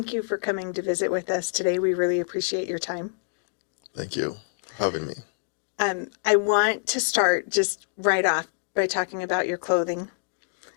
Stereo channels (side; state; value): right; silent; digital silence